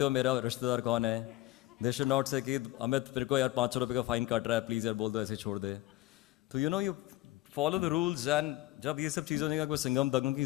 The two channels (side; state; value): right; quieter; 17.2 dB